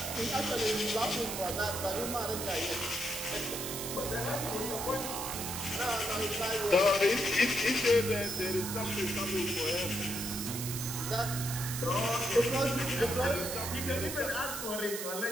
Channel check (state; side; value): noise; right; hiss, 5 dB below the sound